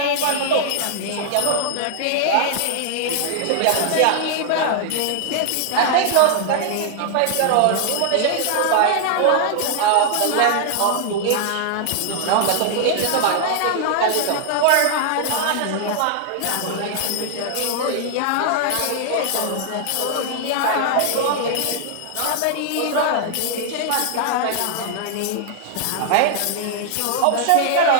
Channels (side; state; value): both; different; correlation -0.01